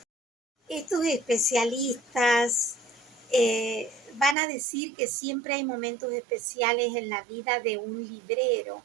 Estos especialistas van a decir que siempre hay momentos especiales en la vida de un librero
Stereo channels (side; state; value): left; drops out; at 4.4 s